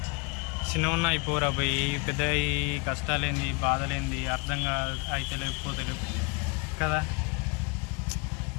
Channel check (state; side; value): quieter; right; 30.9 dB